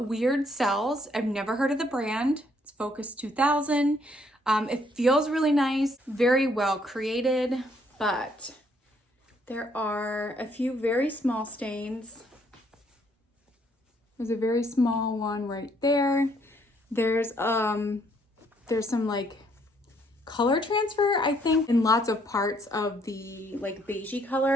weird sells. I've never heard of the brand. It's Focus 2000. It feels really nice, very well created, but there are a few very small stains. There's a very small one right there. There's some like color transfer, I think, in lots of parts of the like beigey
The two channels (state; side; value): normal; both; correlation 0.68